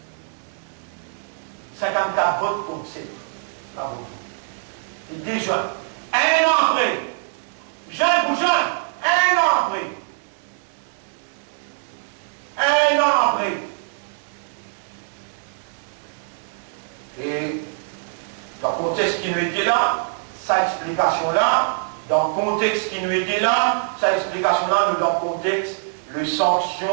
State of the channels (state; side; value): silent; left; digital silence